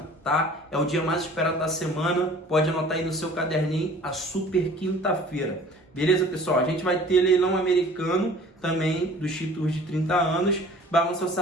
tá? É o dia mais esperado da semana. Pode anotar aí no seu caderninho, a super quinta-feira. Beleza, pessoal? A gente vai ter leilão americano também dos títulos de 30 anos, balança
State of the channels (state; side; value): normal; both; correlation 0.48